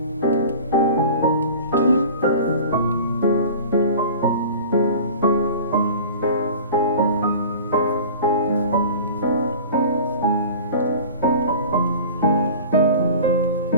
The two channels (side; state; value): both; inverted; correlation -0.40